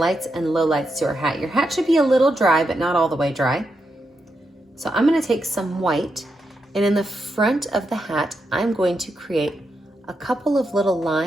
and lowlights to our hat. Your hat should be a little dry, but not all the way dry. So I'm going to take some white, and in the front of the hat, I'm going to create a couple of little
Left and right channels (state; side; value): normal; both; correlation 0.84